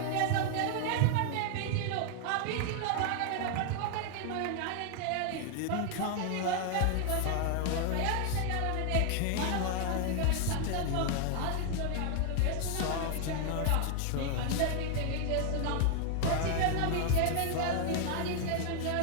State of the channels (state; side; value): different; both; correlation 0.00